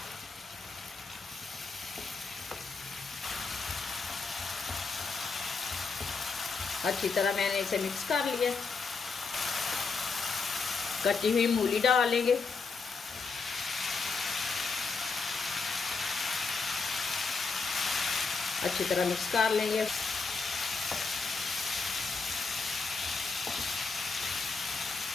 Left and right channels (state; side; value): quieter; right; 4.6 dB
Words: अच्छी तरह मैंने इसे मिक्स कर लिया। कटी हुई मूली डाल लेंगे। अच्छी तरह मिक्स कर लेंगे।